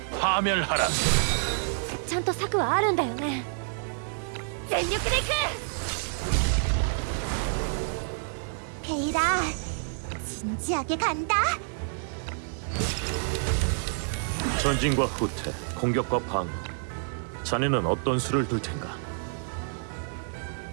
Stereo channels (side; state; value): left; silent; digital silence